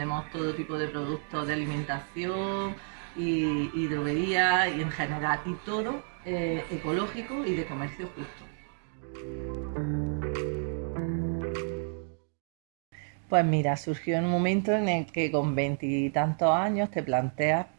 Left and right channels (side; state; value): left; silent; 58 dB below the other